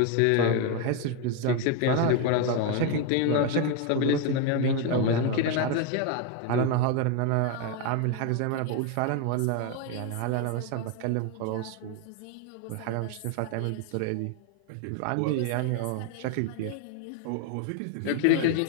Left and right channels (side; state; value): both; different; correlation 0.01